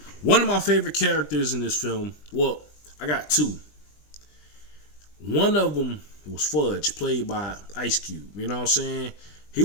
one of my favorite characters in this film, well, I got 2. One of them was Fudge, played by Ice Cube. You know what I'm saying? He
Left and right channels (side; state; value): right; late; 20 ms